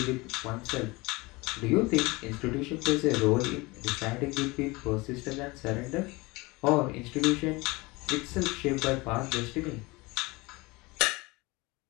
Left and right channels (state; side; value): quieter; right; 23.5 dB